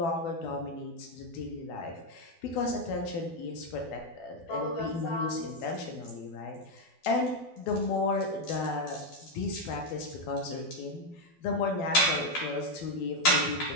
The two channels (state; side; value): late; right; 12 ms